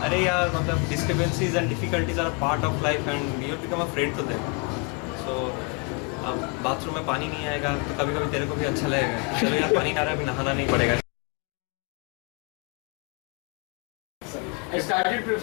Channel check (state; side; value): quieter; right; 30.0 dB